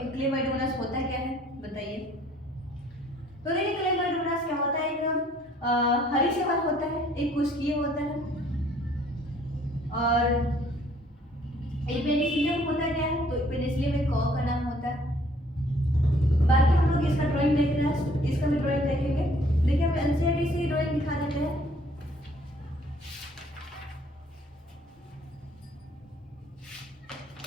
होता क्या है। बताइए। तो देखिए क्लेमाइडोमोनास क्या होता है, एक हरी शैवाल होता है, एक कुष्कीय होता है, और एक पेनिसिलियम होता क्या है, तो पेनिसिलियम एक कॉ का नाम होता है। बाकी हम लोग इसका ड्राइंग देख रहे हैं, इसका भी ड्राइंग देखेंगे। देखिए हम एनसीईआरटी से ड्राइंग दिखा देते हैं।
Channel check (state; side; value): normal; both; correlation 0.60